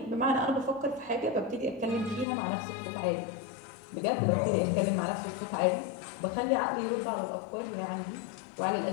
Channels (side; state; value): right; drops out; at 2.2 s